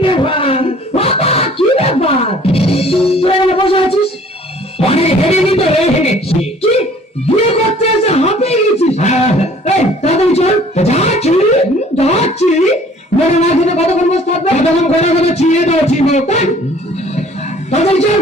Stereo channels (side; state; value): both; normal; correlation 0.53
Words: ব্যাপার বাবা, কি ব্যাপার তুই এখানে বসে আছিস? অনেক হেঁটে নিত হেঁটেছি কি বিয়ে করতে এসে হাঁপিয়ে গেছিস? এই তাড়াতাড়ি চল। যাচ্ছি যাচ্ছি মনে না খেতে কতক্ষণ বসে থাকবে? কতক্ষণ করে করে চিয়ে দাওছি তাড়াতাড়ি চল।